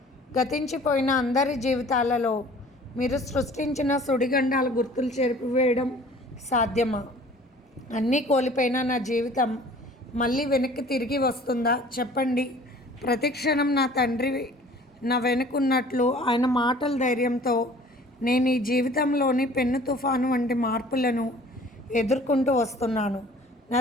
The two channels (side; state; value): both; normal; correlation 0.50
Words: గతించిపోయిన అందరి జీవితాలలో మీరు సృష్టించిన సుడిగండాల గుర్తులు చెరిపివేయడం సాధ్యమా? అన్నీ కోల్పోయిన నా జీవితం మళ్ళీ వెనక్కి తిరిగి వస్తుందా? చెప్పండి. ప్రతిక్షణం నా తండ్రి నా వెనుకున్నట్లు ఆయన మాటల ధైర్యంతో నేను ఈ జీవితంలోని పెన్ను తుఫాను వంటి మార్పులను ఎదుర్కొంటూ వస్తున్నాను. నా